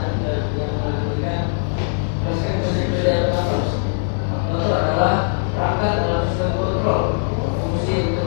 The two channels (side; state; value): right; silent; 63 dB below the other